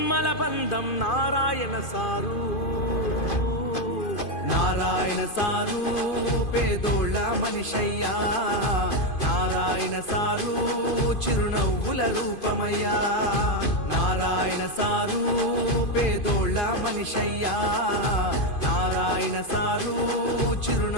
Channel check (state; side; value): late; right; 2.5 ms